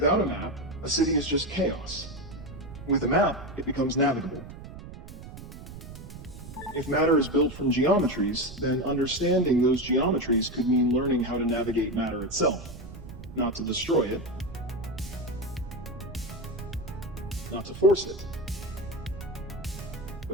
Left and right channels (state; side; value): noise; right; rumble, 13 dB below the sound